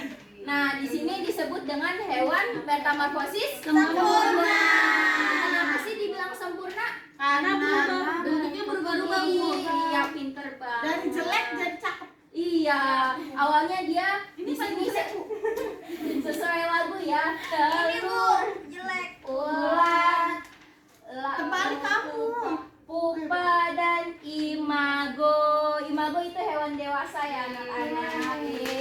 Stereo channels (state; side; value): identical; both; correlation 1.00